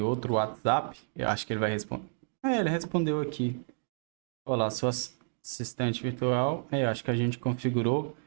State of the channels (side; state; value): left; silent; digital silence